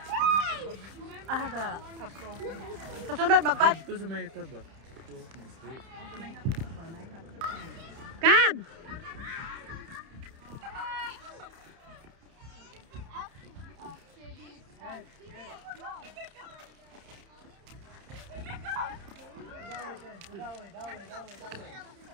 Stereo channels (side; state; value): left; late; 30 ms